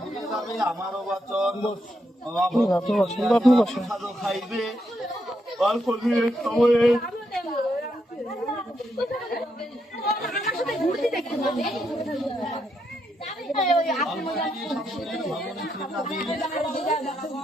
দিলে যাবে আমারও বচন। প্রসাদ খাইবে অল্প দিনের সময়ে,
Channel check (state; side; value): normal; both; correlation 0.80